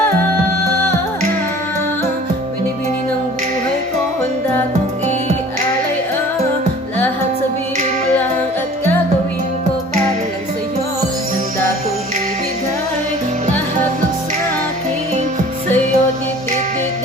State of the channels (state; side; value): normal; both; correlation 0.47